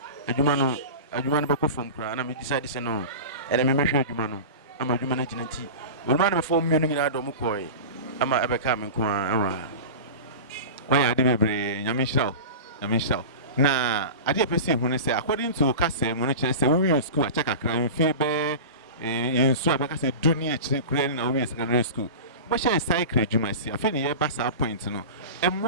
adwuma no be ko from kra na me decide say no e de me hwe adwuma no ama adwuma na gina nti we ma na me form me no nyina do mo koi ama abeka me nko a why ade bebre nyame hiraw na ade pese hu ne say according to kase mo no kire say we school a check akra mfi be yensu abeka say dunia kire kure na we secondary school but she cycle adwuma si afi ne ye ba sa point no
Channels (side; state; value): both; inverted; correlation -0.30